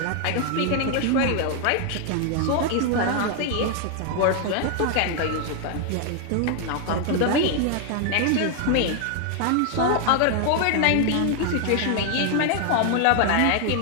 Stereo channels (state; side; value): different; both; correlation 0.00